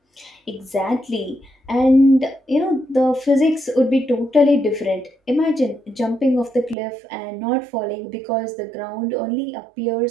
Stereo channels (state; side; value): drops out; left; at 6.8 s